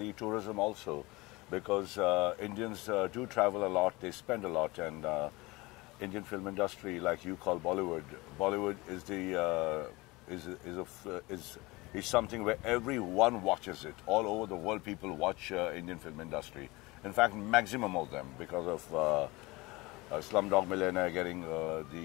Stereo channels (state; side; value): quieter; right; 22.6 dB